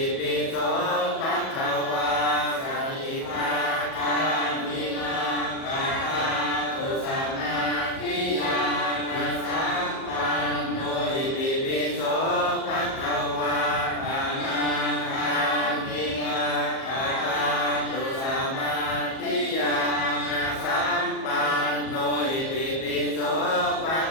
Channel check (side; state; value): right; late; 37 ms